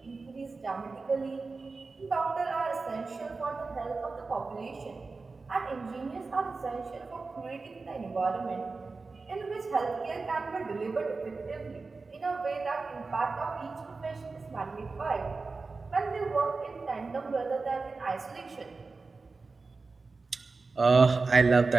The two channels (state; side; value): quieter; left; 4.0 dB